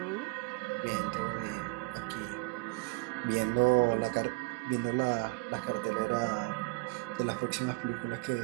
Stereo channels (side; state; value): left; quieter; 28.1 dB